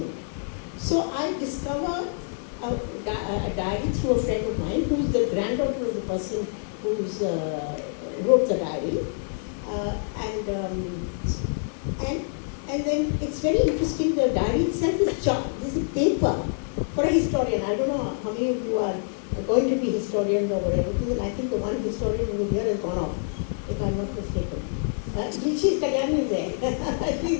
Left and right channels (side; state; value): right; silent; digital silence